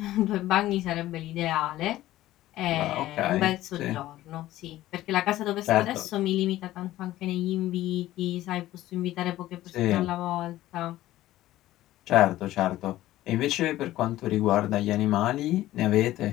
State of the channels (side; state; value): right; quieter; 15.1 dB